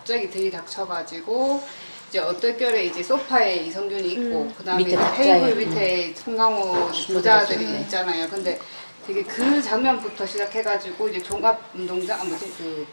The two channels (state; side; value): inverted; both; correlation -1.00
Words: 들이닥쳐가지고 이제 어떨결에 이제 소파에 이성균이 있고 그다음에 밑에 이제 탁자에. 테이블 밑에 송강호 부자들이 있잖아요. 근데 되게 그 장면부터 시작해가지고 이제 종합운동장